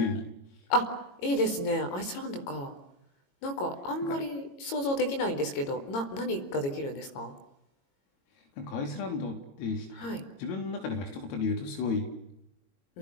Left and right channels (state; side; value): late; right; 22 ms